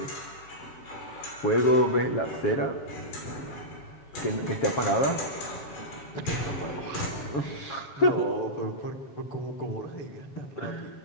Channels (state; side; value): late; right; 7.3 ms